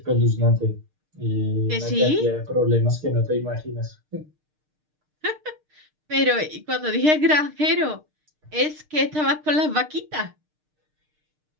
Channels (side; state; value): left; late; 6.6 ms